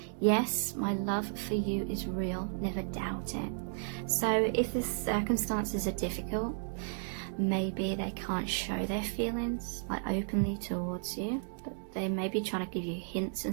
yes, my love for you is real, never doubt it. So if the circumstances are difficult, maybe they can't show their feelings like openly towards you, but they may be trying to give you hints in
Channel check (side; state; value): left; silent; digital silence